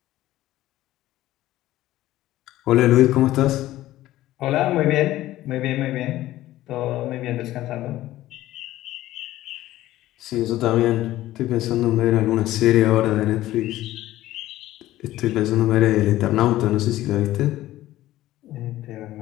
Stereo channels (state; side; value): quieter; right; 15.2 dB